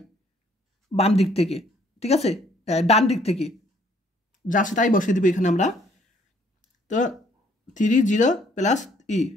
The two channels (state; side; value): normal; both; correlation 0.63